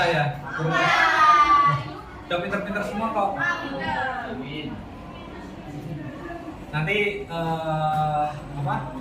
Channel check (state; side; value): identical; both; correlation 1.00